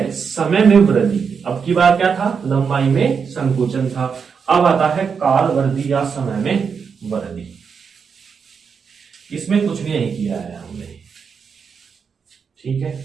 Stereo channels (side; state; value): left; quieter; 6.1 dB